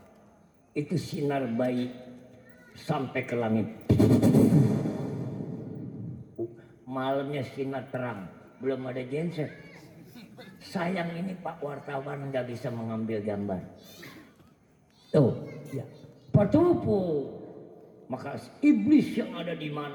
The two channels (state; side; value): identical; both; correlation 1.00